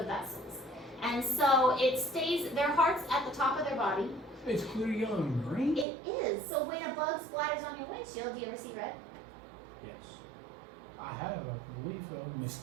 vessels. And so it stays, their heart's at the top of their body. It's clear yellow and green? It is. So when a bug splatters on your windshield, do you ever see red? Yes. I have, I believe so.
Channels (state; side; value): drops out; left; at 5.9 s